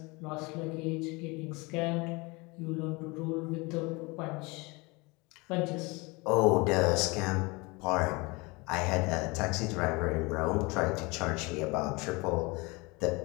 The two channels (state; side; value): quieter; right; 26.1 dB